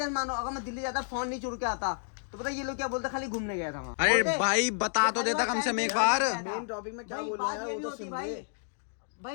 मानो अगर मैं दिल्ली जाता फोन नहीं चुरा के आता तो पता ये लोग क्या बोलते, खाली घूमने गया था वहाँ। अरे ओके? भाई बता तो देता कम से कम एक बार। मेन टॉपिक में क्या भाई, बोल रहा बात है ये वो भी तो होती सुन भाई। ले।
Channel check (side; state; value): right; silent; digital silence